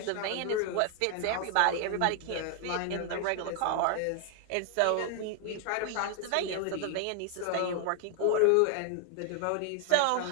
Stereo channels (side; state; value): both; different; correlation 0.00